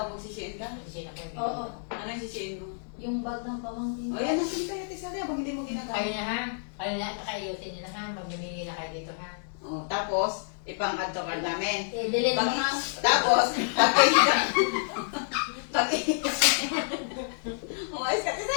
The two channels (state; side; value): silent; right; digital silence